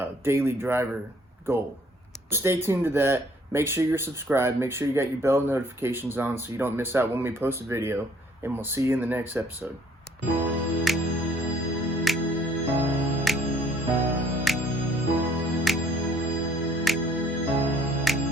daily driver goal. Stay tuned to that. Make sure you're subscribed. Make sure you got your bell notifications on so you don't miss out when we post a video. And we'll see you in the next episode.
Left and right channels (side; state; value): both; normal; correlation 0.61